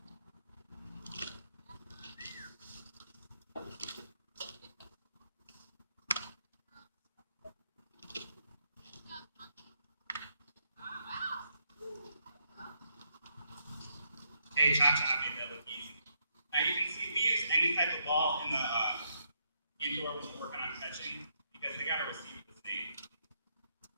Hey, cha-cha made that look easy. Now you can see we use any type of ball in the indoor when we're working on catching because they got to receive the same.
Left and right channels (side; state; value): both; inverted; correlation -0.76